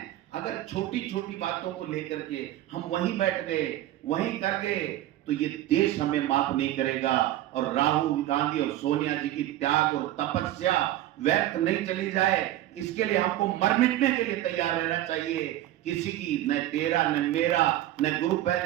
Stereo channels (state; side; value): quieter; left; 14.2 dB